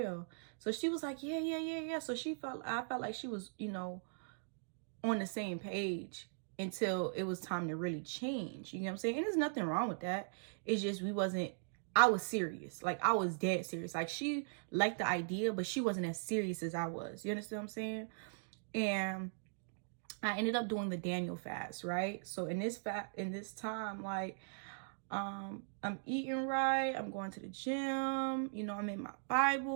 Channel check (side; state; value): left; silent; digital silence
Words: So she was like, yeah. So I felt like she was, you know, on the same page until it was time to really change. You know what I'm saying? And there's nothing wrong with that. It's just I was serious. Like, I was dead serious. Like, she liked the idea, but she wasn't as serious as I was. You understand what I'm saying? And I ended up doing the Daniel fast, right? So in this time, like, I'm eating right. I'm going to the gym. You know, I'm in my